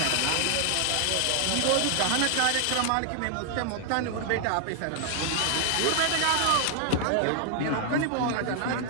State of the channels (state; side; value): different; both; correlation 0.00